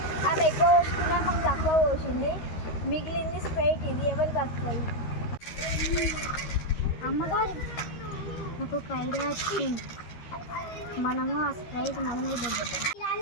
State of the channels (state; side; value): late; right; 13 ms